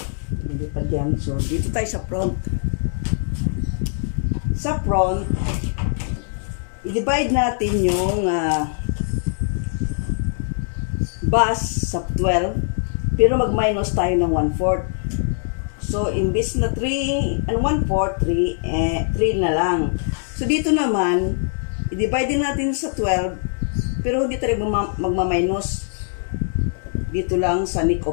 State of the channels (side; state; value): right; silent; digital silence